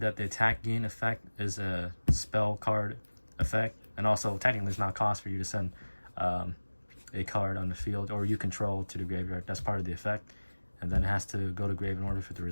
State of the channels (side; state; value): both; inverted; correlation -1.00